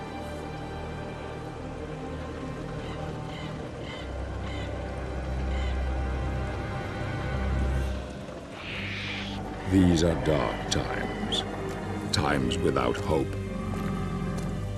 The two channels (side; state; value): both; identical; correlation 1.00